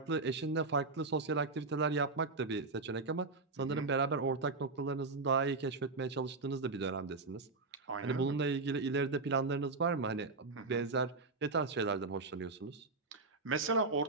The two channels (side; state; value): left; quieter; 3.7 dB